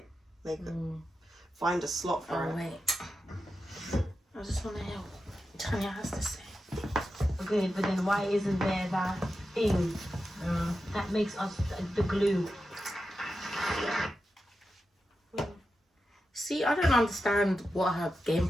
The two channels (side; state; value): both; normal; correlation 0.90